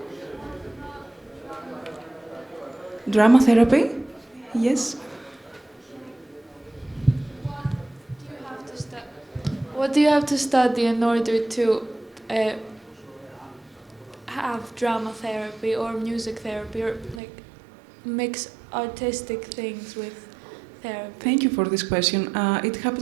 Drama therapy, yes. What do you have to study in order to have drama therapy or music therapy, or like mix artistic things with therapy? Thank you for this question. It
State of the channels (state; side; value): drops out; left; at 17.2 s